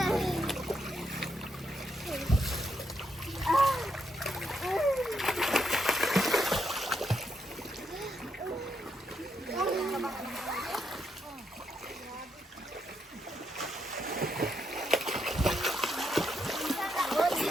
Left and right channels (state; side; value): normal; both; correlation 0.79